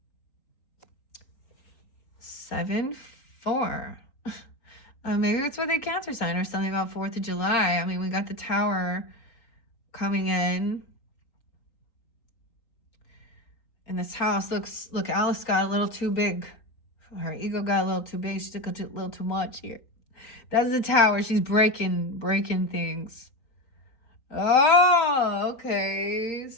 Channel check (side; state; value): right; late; 3.9 ms